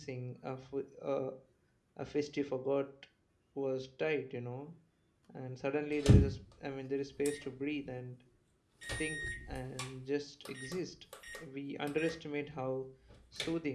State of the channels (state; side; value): identical; both; correlation 1.00